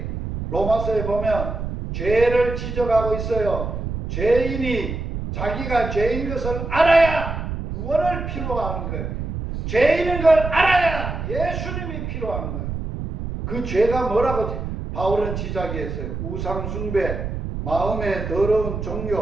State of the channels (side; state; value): right; noise; rumble, 5 dB below the sound